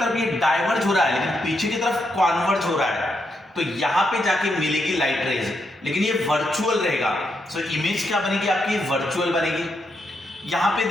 ये डाइवर्ज हो रहा है लेकिन पीछे की तरफ कॉन्वर्ज हो रहा है, तो यहां पे जाके मिलेगी लाइट रेज, लेकिन ये वर्चुअल रहेगा। सो इमेज क्या बनेगी आपकी? वर्चुअल बनेगी। यहां पे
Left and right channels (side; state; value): both; normal; correlation 0.81